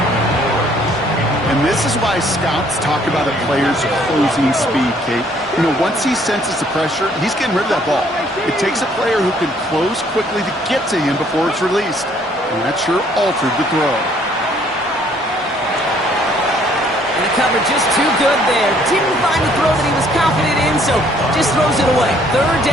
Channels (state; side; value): normal; both; correlation 0.63